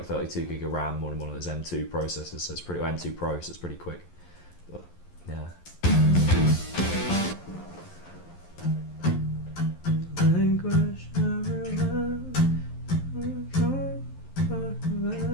32 gig of RAM on one of those M2 processors, so it's pretty, or M2 Pro, so it's pretty quick. But yeah.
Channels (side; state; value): right; late; 11 ms